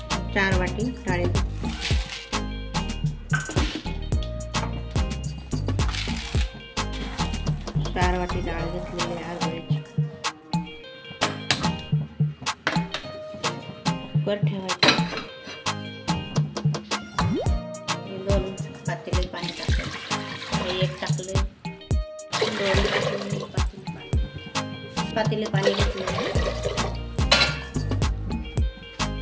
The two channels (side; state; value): both; identical; correlation 1.00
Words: 4 वाटी डाळ, 4 वाटी डाळ घेतलेली आहे हरभऱ्याची। कुकर ठेवायचं, 2 पातेले पाणी टाकायचं, 1 टाकले, 2 पातेले पाणी घेतले।